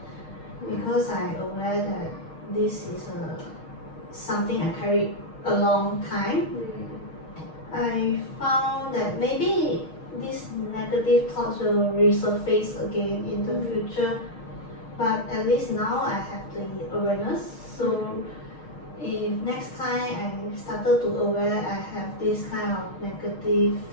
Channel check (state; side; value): late; right; 6.4 ms